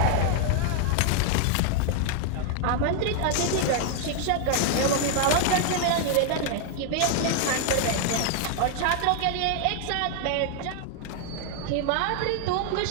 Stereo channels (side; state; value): both; different; correlation 0.00